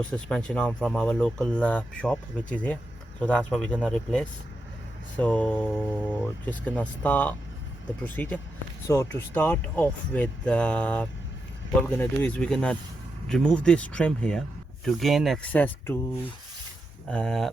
suspension arm from our local shop, which is here. So that's what we're gonna replace. So just gonna start the procedure. So to start off with, what we're gonna do is we're gonna remove this trim here to gain access to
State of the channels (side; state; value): both; normal; correlation 0.86